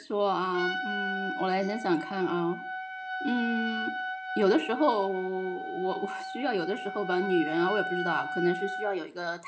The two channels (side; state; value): both; identical; correlation 1.00